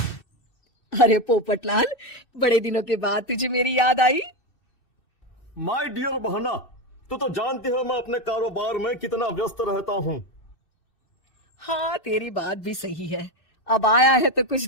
अरे पोपटलाल, बड़े दिनों के बाद तुझे मेरी याद आई। माय डियर बहना, तू तो जानती है मैं अपने कारोबार में कितना व्यस्त रहता हूँ। हाँ, तेरी बात भी सही है। अब आया है तो कुछ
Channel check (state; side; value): late; right; 2.6 ms